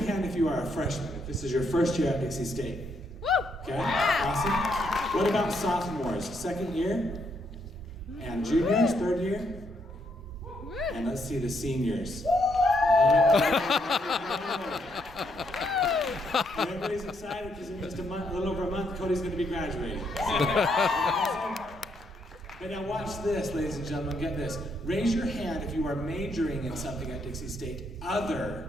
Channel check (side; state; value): both; normal; correlation 0.75